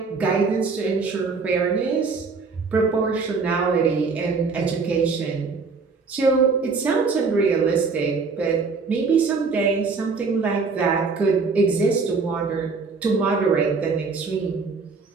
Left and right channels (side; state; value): left; quieter; 4.6 dB